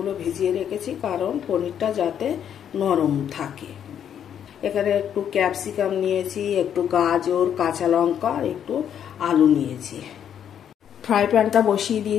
ভিজিয়ে রেখেছি, কারণ পনিরটা যাতে নরম থাকে। এখানে একটু ক্যাপসিকাম নিয়েছি, একটু গাজর, কাঁচা লঙ্কা, একটু আলু নিয়েছি। ফ্রাই প্যানটা বসিয়ে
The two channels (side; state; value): right; quieter; 9.1 dB